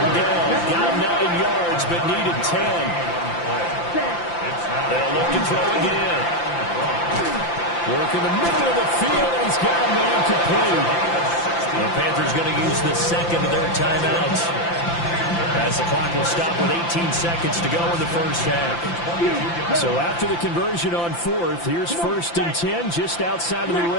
down. Got 9 yards but needed 10. They'll look to throw again. Work in the middle of the field and he's got a man complete. The Panthers going to use the second of their timeouts. As the clock will stop with 18 seconds to go in the first half. So after the conversion on 4th, here's 1st and 10 just outside of the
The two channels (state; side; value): late; right; 5.8 ms